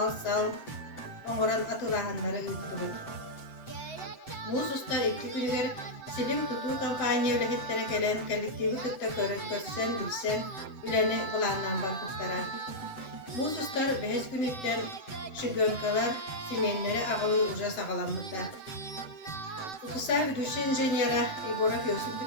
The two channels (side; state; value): right; late; 7.9 ms